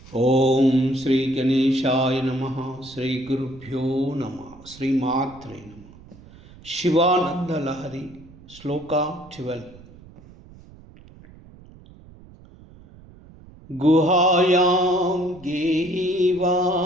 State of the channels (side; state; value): right; noise; rumble, 22 dB below the sound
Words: ఓం శ్రీ గణేశాయ నమః. శ్రీ గురుభ్యో నమః. శ్రీమాత్రే నమః. శివానంద లహరి శ్లోక 12. గుహాయాం గేహీవా